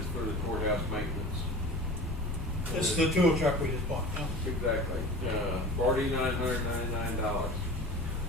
for the courthouse maintenance. This is the tool truck we just bought, huh? Exactly, $4,999.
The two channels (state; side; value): normal; both; correlation 0.37